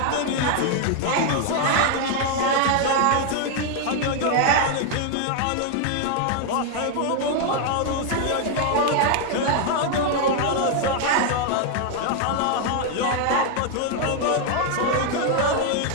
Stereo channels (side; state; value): both; different; correlation 0.00